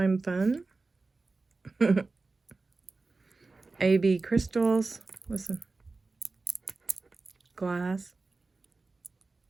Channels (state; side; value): quieter; left; 3.7 dB